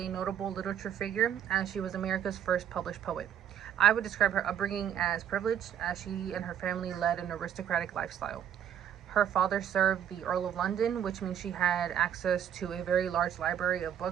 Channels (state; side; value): quieter; left; 9.5 dB